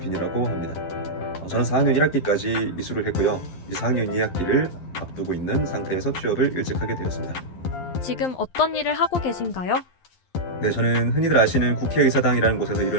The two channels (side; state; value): right; late; 11 ms